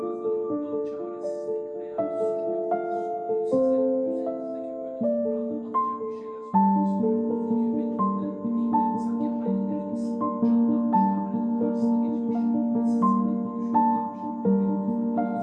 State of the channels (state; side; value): identical; both; correlation 1.00